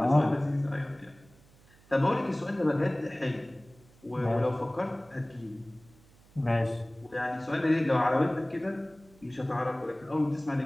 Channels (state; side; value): noise; right; hum, 27 dB below the sound